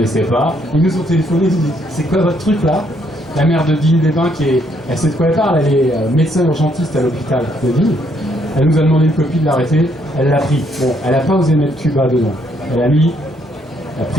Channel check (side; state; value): both; normal; correlation 0.71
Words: pas. Ils nous ont téléphoné, ils nous disent c'est quoi votre truc là? La maire de Digne-les-Bains, elle sait de quoi elle parle, elle est médecin urgentiste à l'hôpital de Digne. Elle nous a demandé une copie de l'arrêté, elle l'a pris. Bon, elle n'a pas osé mettre Cuba dedans. Elle a mis a